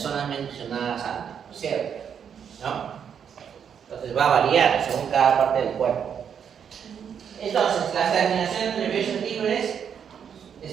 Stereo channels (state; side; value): quieter; left; 7.8 dB